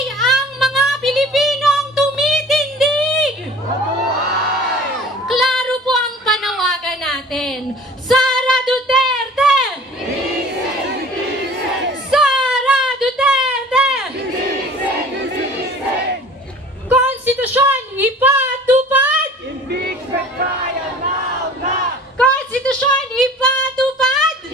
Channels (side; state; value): both; normal; correlation 0.45